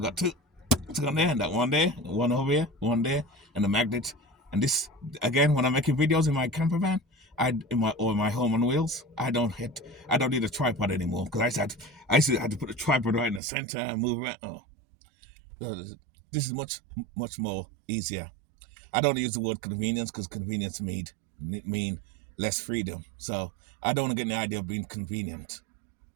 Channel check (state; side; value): drops out; left; at 13.4 s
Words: two. It's on there, and that one there, one over here, one there, and the magnet. And this again, when I'm making videos in my camper van, in my home on wheels, I don't need a tripod anymore because I used to have to put a tripod right in the center and move around. This is much more easier. I don't use the word convenience because convenience mean less freedom. So I don't want to get the idea of being convenient,